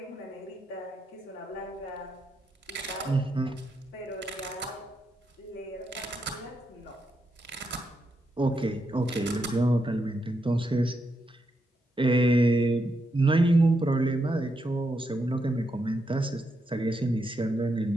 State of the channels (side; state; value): both; normal; correlation 0.82